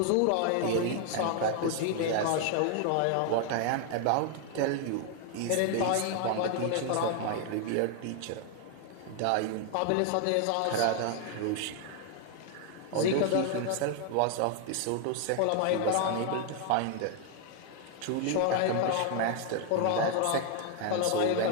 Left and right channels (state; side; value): different; both; correlation 0.00